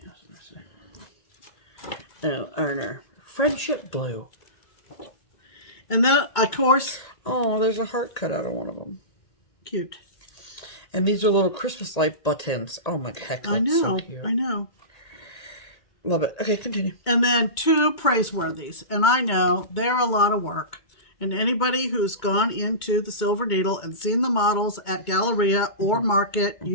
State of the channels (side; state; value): right; late; 2.2 ms